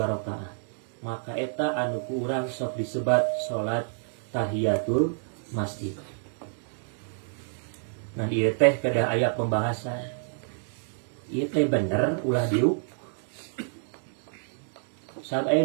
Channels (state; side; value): silent; left; digital silence